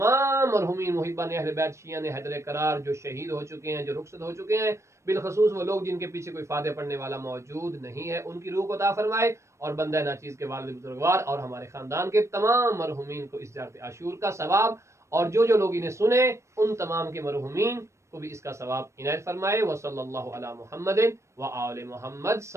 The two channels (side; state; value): left; late; 0.14 ms